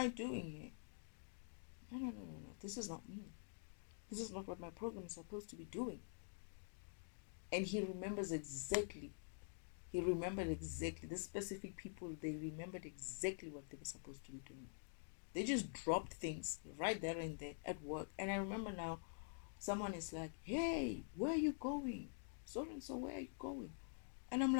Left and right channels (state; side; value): silent; right; digital silence